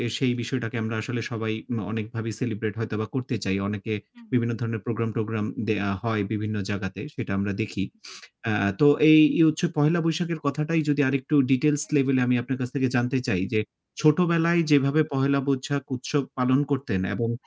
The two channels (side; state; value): both; identical; correlation 1.00